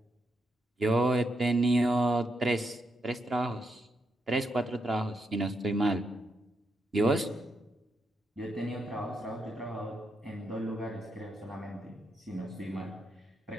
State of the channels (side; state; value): both; normal; correlation 0.82